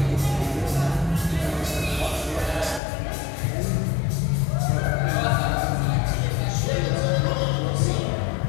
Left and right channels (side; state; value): right; drops out; at 2.8 s